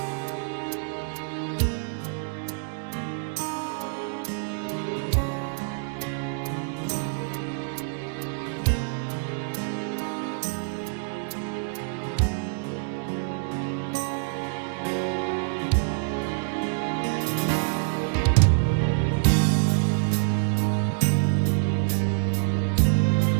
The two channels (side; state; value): left; silent; digital silence